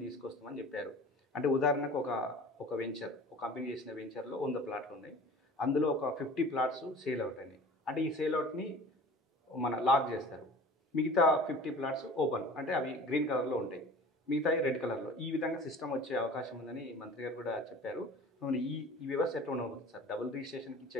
తీసుకొస్తామని చెప్పారు. అంటే ఉదాహరణకు ఒక వెంచర్, ఒక కంపెనీ చేసిన వెంచర్లో 100 ప్లాట్లు ఉన్నాయి. అందులో ఒక 50 ప్లాట్స్ సేల్ అవుట్ అయినాయి. అంటే ఈ సేల్ అవుట్ని మన లాక్ చేస్తారు. మిగతా 50 ప్లాట్స్ ఓపెన్, అంటే అవి గ్రీన్ కలర్లో ఉంటాయి, మిగతాయి రెడ్ కలర్లో. ఈ విధంగా సిస్టమ్ వచ్చే అవకాశం ఉందని మంత్రి గారు కూడా చెప్పారు. ఈ వ్యవస్థ ఎట్లా ఉండబోతుంది సార్? డబుల్ రిజిస్ట్రేషన్కి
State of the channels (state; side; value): normal; both; correlation 0.42